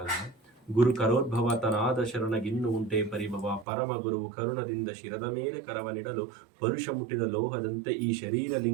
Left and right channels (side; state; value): left; drops out; at 3.7 s